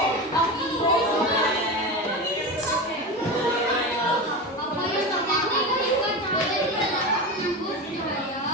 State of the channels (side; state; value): both; normal; correlation 0.23